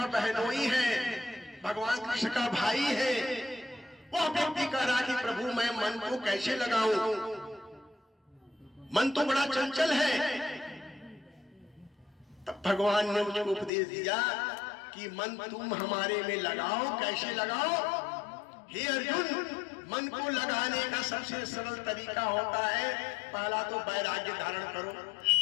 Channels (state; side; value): drops out; right; at 13.7 s